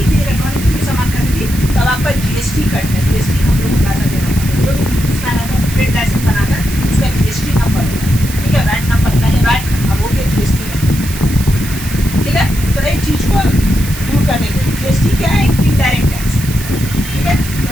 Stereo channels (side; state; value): right; noise; hiss, 11 dB below the sound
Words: भी इलेक्ट्रॉनिक कोई भी सामान खरीदी तब आपका जीएसटी कट है। जीएसटी हम लोग को पैसा देना पड़ता है। जो भी बिजनेसमैन होता है ट्रेड लाइसेंस बनाता है उसका जीएसटी नंबर होता है। ठीक है, वैट नंबर, पहले वैट अब हो गया जीएसटी नंबर। ठीक है, तो एक चीज़ को दूर करने के लिए जीएसटी क्या है? Indirect tax. ठीक है, तो